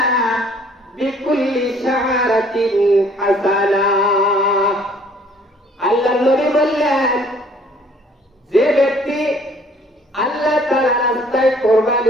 বিকুল্লি শাআরাতিন হাসানা। আল্লাহর নবী বললেন, যে ব্যক্তি আল্লাহ তাআলার রাস্তায়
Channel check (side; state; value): both; normal; correlation 0.58